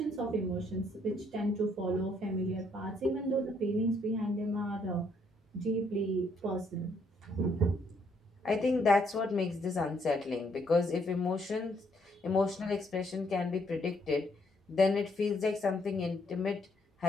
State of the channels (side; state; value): both; normal; correlation 0.70